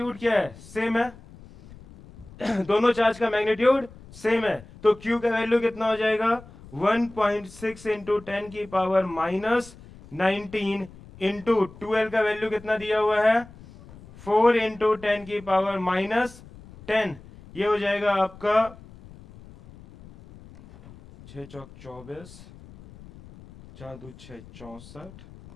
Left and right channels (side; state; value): left; noise; rumble, 20 dB below the sound